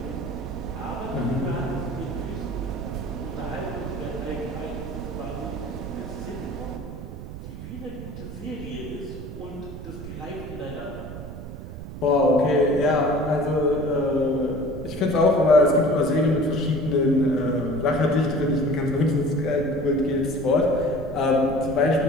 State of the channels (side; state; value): right; noise; rumble, 10 dB below the sound